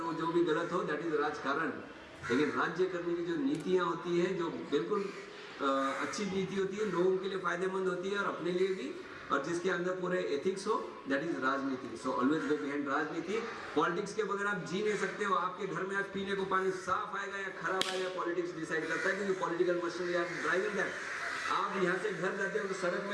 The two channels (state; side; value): identical; both; correlation 1.00